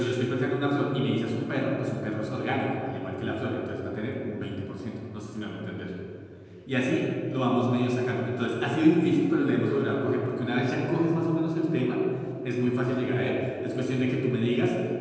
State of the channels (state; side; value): identical; both; correlation 1.00